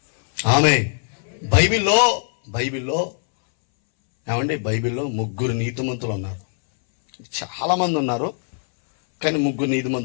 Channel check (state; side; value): silent; right; 63 dB below the other